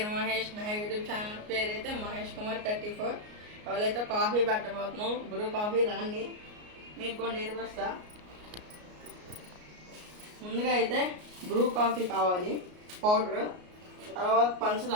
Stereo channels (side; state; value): left; late; 33 ms